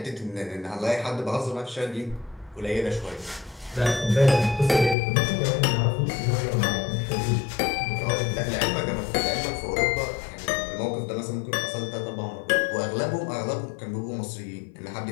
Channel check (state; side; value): drops out; right; at 5.0 s